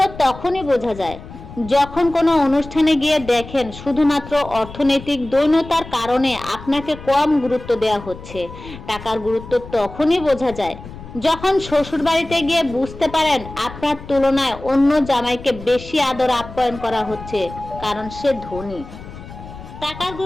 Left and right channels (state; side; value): noise; left; rumble, 15 dB below the sound